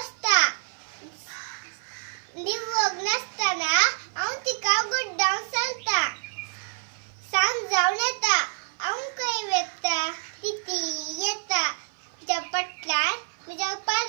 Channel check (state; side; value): silent; left; 55 dB below the other